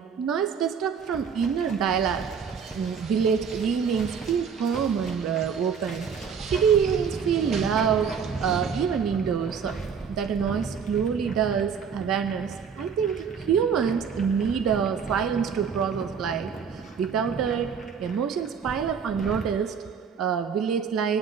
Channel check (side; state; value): left; quieter; 6.7 dB